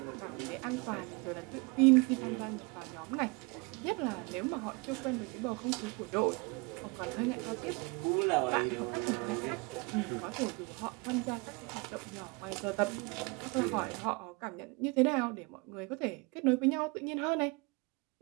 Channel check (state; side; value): quieter; left; 28.1 dB